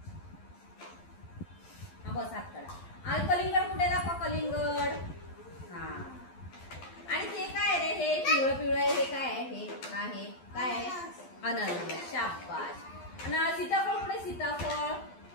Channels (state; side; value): late; right; 12 ms